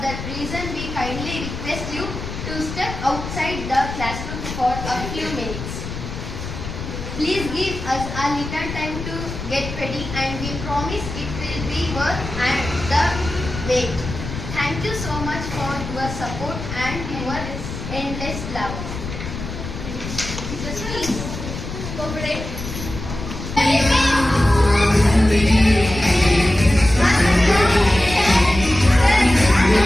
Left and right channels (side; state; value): left; noise; rumble, 8 dB below the sound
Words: that reason we kindly request you to step outside the classroom for a few minutes. Please give us a little time to get ready, and we promise it will be worth the wait. Thank you so much for your support and your endless love. Please cooperate.